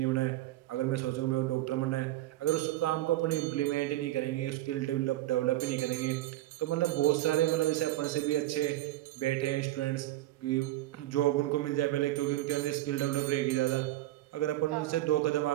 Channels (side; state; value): left; quieter; 15.7 dB